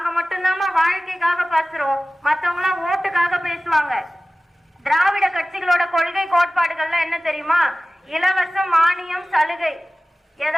மட்டும்தான் வாழ்க்கைக்காக பேசுறோம், மத்தவங்க எல்லாம் ஓட்டுக்காக பேசுவாங்க. திராவிட கட்சிகளோட கொள்கை கோட்பாடுகள்லாம் என்ன தெரியுமா? இலவசம், மானியம், சலுகை.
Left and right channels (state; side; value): normal; both; correlation 0.97